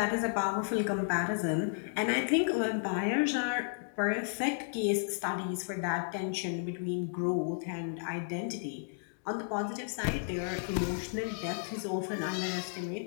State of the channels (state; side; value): silent; right; digital silence